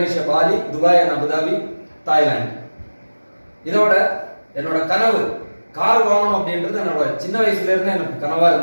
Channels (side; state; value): both; inverted; correlation -1.00